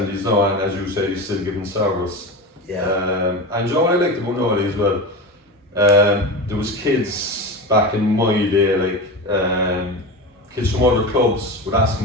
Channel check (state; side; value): normal; both; correlation 0.25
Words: now, and as you say, he's still giving service. And what I liked about Noel as well, there was kids back in my day, kids from other clubs would ask